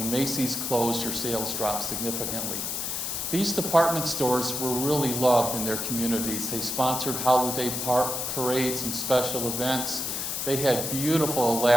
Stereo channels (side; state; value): left; noise; hiss, 2 dB below the sound